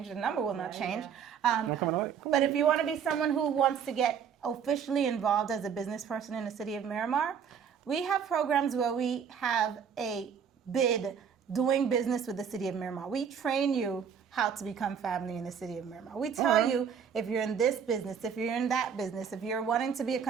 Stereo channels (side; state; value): left; quieter; 7.4 dB